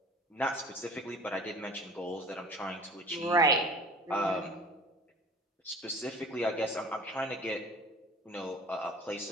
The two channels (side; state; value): both; normal; correlation 0.44